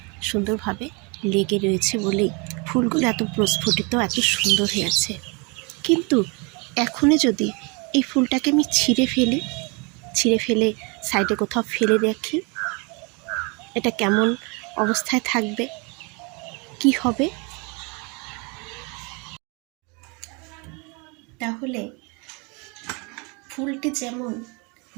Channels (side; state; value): left; quieter; 30.7 dB